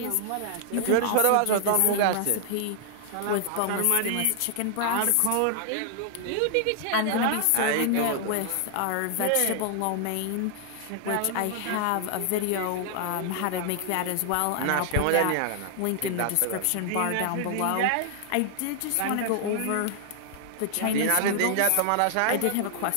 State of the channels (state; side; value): different; both; correlation -0.01